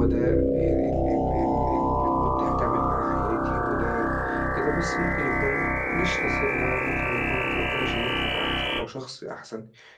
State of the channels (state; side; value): identical; both; correlation 1.00